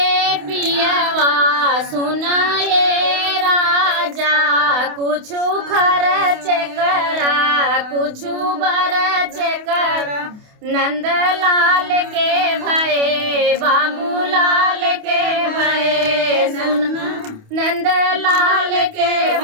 पियावा सुनाए राजा, कुछ खर्च करा कुछ बरच करा, नंदलाल के भये बाबूलाल के भये, सुना नंदलाल के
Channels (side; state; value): left; late; 28 ms